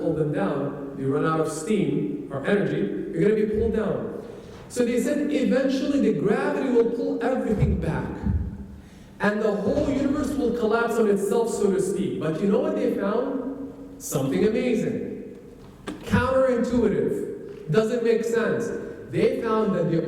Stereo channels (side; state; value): both; identical; correlation 1.00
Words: them down. You run out of steam or energy, you're going to be pulled down. So they said eventually the gravity will pull everything back. And the whole universe will collapse on itself, so to speak. But you know what they found? Something amazing. Counterintuitive. Doesn't make sense. They found that the